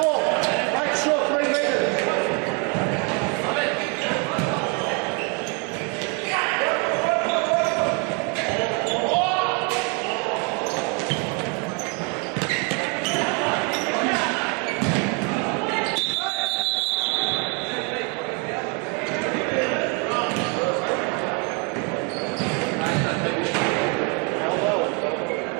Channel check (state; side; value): quieter; left; 34.0 dB